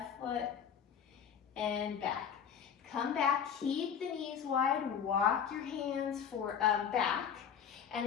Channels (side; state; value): right; quieter; 7.8 dB